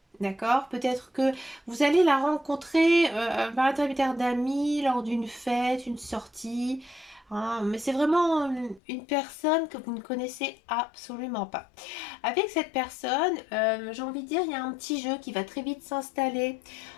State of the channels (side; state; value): right; drops out; at 8.8 s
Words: D'accord? Peut-être que vous allez la rencontrer par l'intermédiaire d'amis lors d'une fête, une sortie. Hein, mais c'est vraiment une personne que vous ne connaissez absolument pas. Avec cette personne, j'ai envie de dire, il y a un petit jeu qui va très vite s'installer.